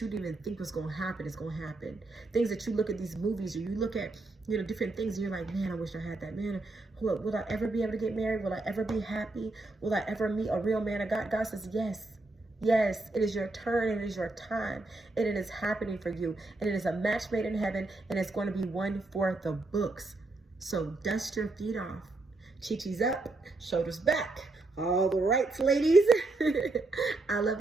didn't even think was going to happen is going to happen. Things that you look at these movies, or you look at, different things, and you're like, man, I wish I had that. Man, will I ever be able to get married? Will I ever be happy? Will I ever meet a real man of God? God says, yes. Yes, it is your turn, and it is your time, and it is happening for you. And it is a match made in heaven, and it's going to be one for the books. So dust your feet off. Chi-chi's up, shoulders back. All the rights, ladies. I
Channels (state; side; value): quieter; left; 3.1 dB